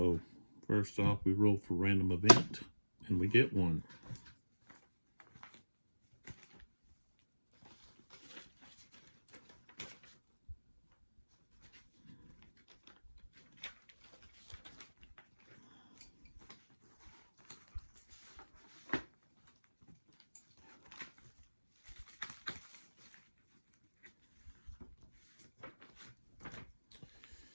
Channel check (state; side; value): inverted; both; correlation -1.00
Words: first off, we roll for random event and we get one.